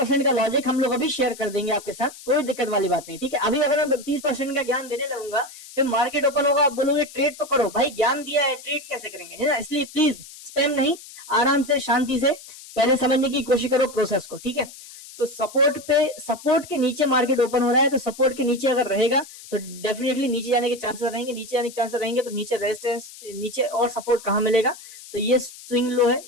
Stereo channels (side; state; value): left; noise; hiss, 17 dB below the sound